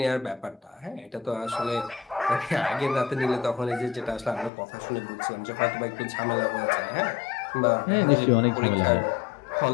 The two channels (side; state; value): right; drops out; at 4.5 s